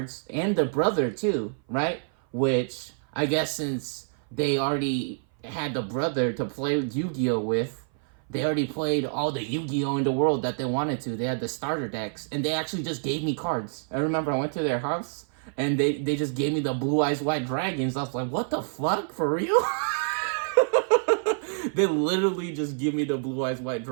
and the brother too, right? Which I guess since they already had the brother to play Yu-Gi-Oh with, they already played all the Yu-Gi-Oh in the world that they wanted to. They had the starter decks, and they actually just gave me cards. I remember I went to their house, and they just gave me the Blue Eyes White Dragons. I was like, what the fuck, for real? They literally just give me the Blue Eyes White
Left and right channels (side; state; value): left; silent; 57 dB below the other